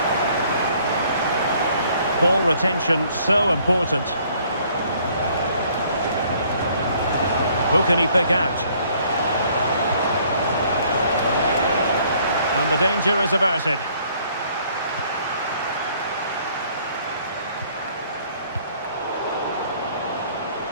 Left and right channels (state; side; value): inverted; both; correlation -0.61